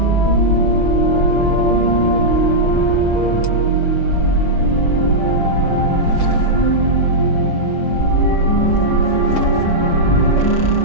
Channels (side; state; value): right; late; 6.0 ms